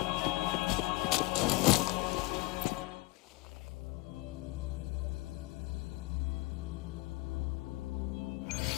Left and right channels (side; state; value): right; quieter; 22.1 dB